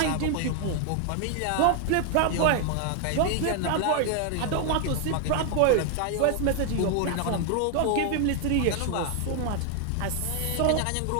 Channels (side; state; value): both; different; correlation 0.00